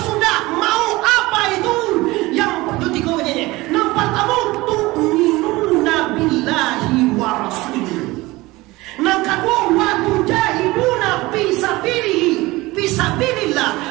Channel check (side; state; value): left; quieter; 20.5 dB